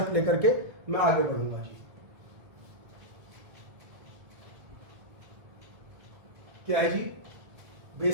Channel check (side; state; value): left; late; 2.0 ms